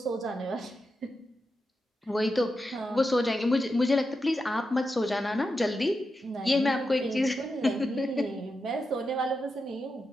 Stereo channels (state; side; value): normal; both; correlation 0.88